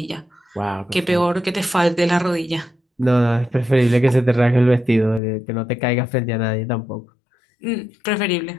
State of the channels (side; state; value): right; drops out; at 5.2 s